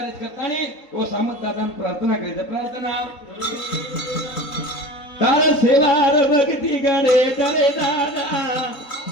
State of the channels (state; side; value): late; right; 3.8 ms